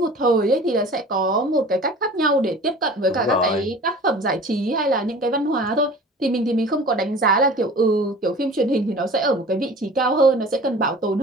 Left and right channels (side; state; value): both; normal; correlation 0.42